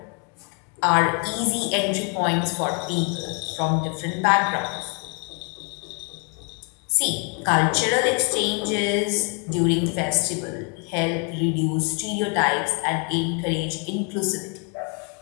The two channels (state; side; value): quieter; right; 36.2 dB